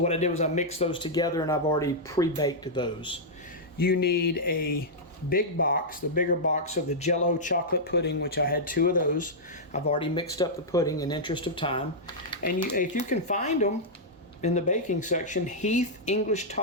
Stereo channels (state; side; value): normal; both; correlation -0.08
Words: I did was I mixed those together, and I've already pre-baked those. You need a big box, the bigger box of the Jell-O chocolate pudding, which I had 2 of those. I've already mixed up the pudding in interest of time. And if you can find them in the baking section, Heath English